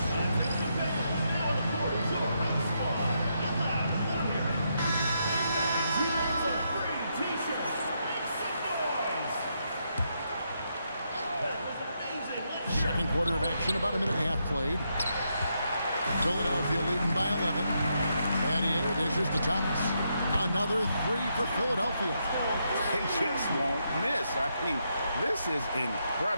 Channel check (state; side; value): inverted; both; correlation -0.80